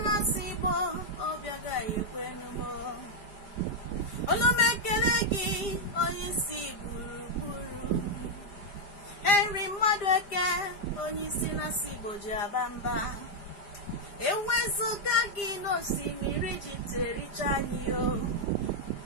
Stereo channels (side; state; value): right; late; 5.0 ms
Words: na-asị Igbo obi agaghị ekwenu m. Olu m ekele gị onye isi gburugburu. Henry Mmadueke onye isi na-asị Igbo ji aba mba. Ewezuga gị n'osimiri ji tericha anyị o.